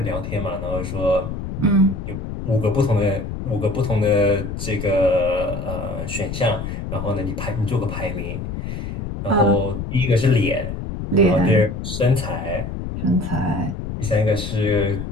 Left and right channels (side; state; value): left; noise; rumble, 6 dB below the sound